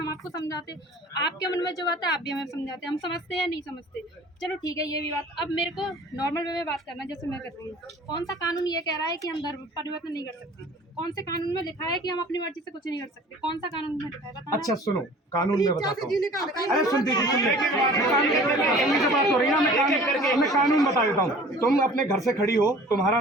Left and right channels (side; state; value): both; normal; correlation 0.47